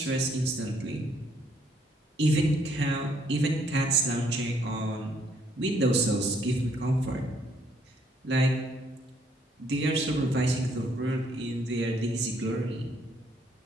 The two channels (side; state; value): both; normal; correlation 0.68